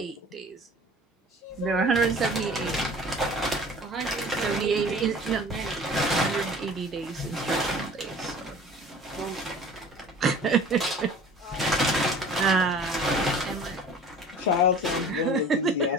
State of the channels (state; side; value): normal; both; correlation 0.45